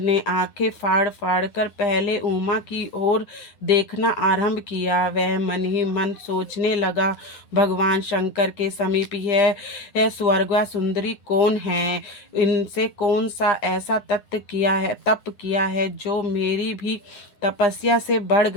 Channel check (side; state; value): right; late; 9.8 ms